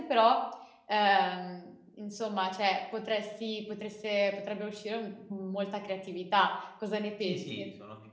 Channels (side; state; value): both; identical; correlation 1.00